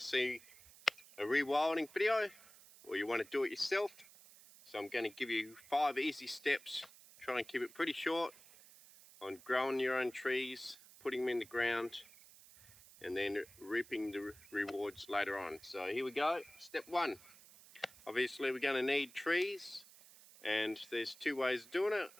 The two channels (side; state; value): right; noise; hiss, 21 dB below the sound